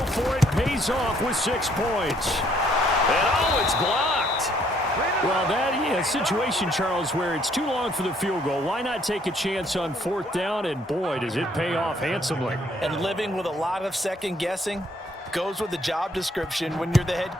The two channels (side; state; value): both; normal; correlation 0.66